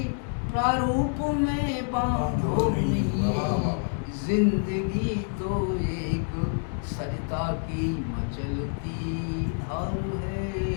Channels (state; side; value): silent; right; 56 dB below the other